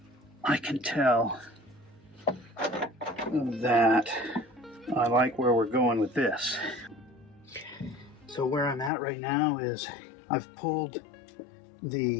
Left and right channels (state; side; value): drops out; right; at 8.9 s